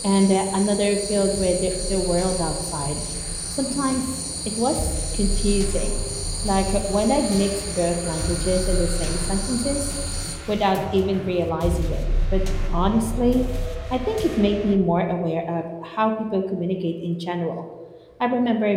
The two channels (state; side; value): identical; both; correlation 1.00